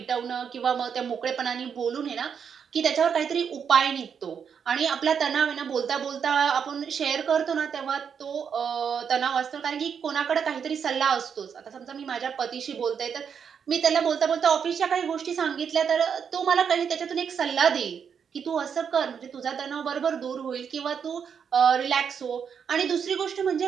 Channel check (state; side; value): quieter; left; 7.1 dB